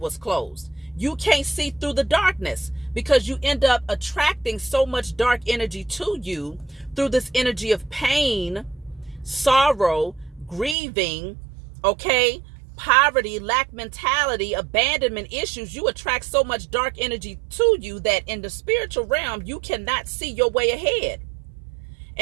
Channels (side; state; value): left; drops out; at 10.8 s